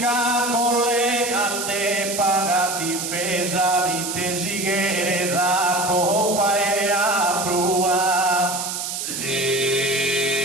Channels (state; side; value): noise; right; hiss, 4 dB below the sound